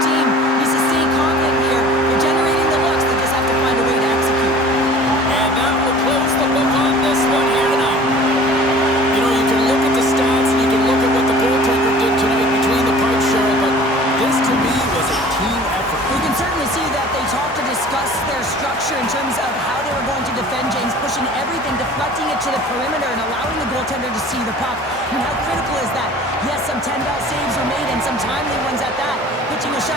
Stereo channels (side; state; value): both; normal; correlation 0.46